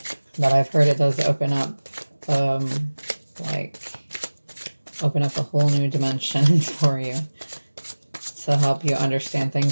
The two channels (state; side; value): inverted; both; correlation -1.00